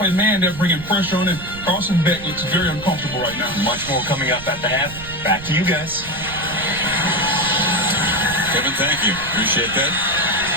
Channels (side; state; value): right; noise; rumble, 14 dB below the sound